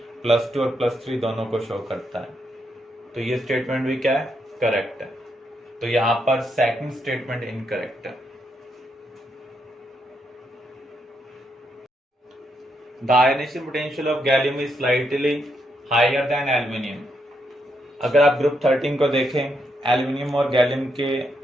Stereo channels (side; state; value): both; normal; correlation 0.79